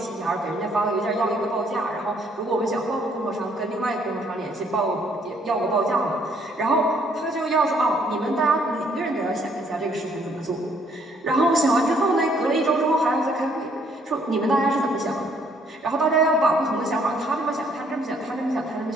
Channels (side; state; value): both; normal; correlation 0.66